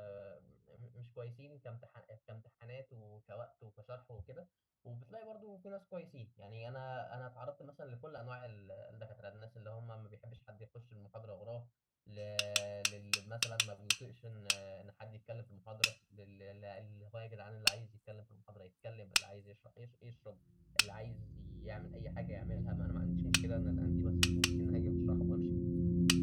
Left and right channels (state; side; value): identical; both; correlation 1.00